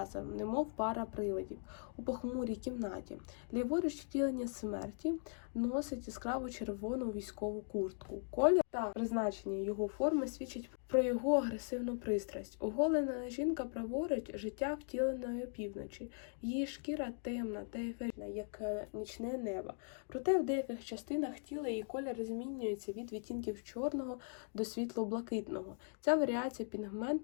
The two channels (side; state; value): right; silent; 51 dB below the other